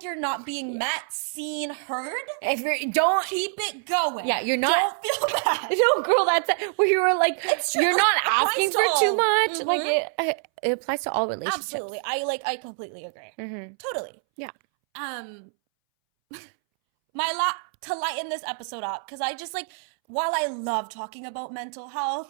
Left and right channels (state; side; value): silent; left; 61 dB below the other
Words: you're not being met, seen, heard, don't keep it going. Yeah, you're not. Don't feel bad. No, girl, that's where you were like, it's true. You're not asking for too much. Mm-hmm. Like it applies to all relationships. Absolutely, I completely agree. Mm-hmm. Totally. Yeah. To lighten this episode up, because I just like, while I love talking about mental